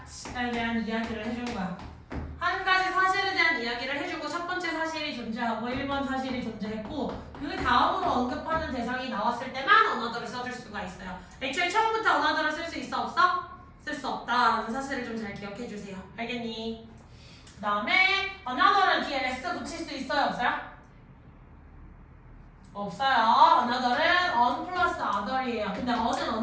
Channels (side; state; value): both; identical; correlation 1.00